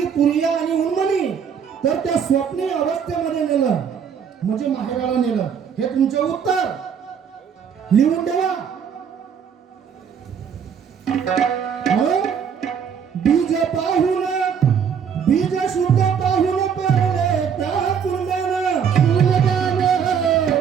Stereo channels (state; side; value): quieter; left; 7.3 dB